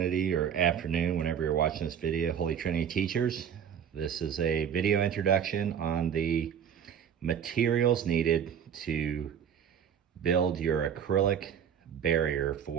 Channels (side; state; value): left; quieter; 8.5 dB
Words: or afternoon, whenever you're watching this video, Holy Trinity teachers. This is a video introduction on the materials needed to build your acrylic barrier